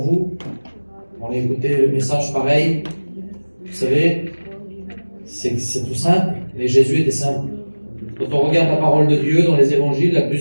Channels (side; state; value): both; inverted; correlation -1.00